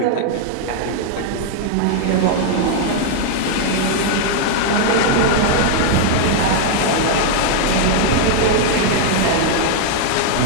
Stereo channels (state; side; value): different; both; correlation 0.00